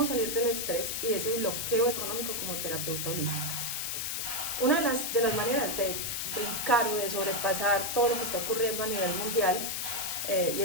salir del estrés y de ese bloqueo económico como terapeuta holística. Una de las maneras de brincar o de sobrepasar todo lo que está ocurriendo a nivel mundial y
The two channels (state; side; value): noise; left; hiss, 2 dB below the sound